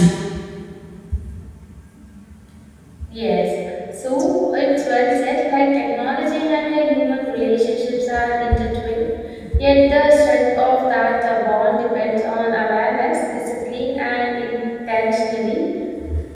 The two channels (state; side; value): identical; both; correlation 1.00